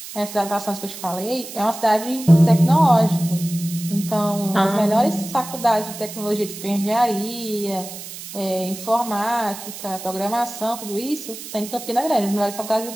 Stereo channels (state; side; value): noise; right; hiss, 12 dB below the sound